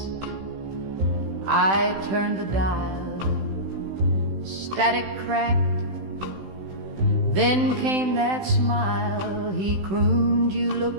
I turned the dial. Static cracked, then came that smile. He crooned, you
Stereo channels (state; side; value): late; left; 16 ms